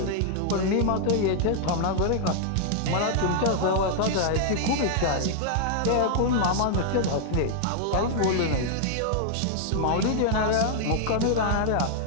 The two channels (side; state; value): both; different; correlation -0.01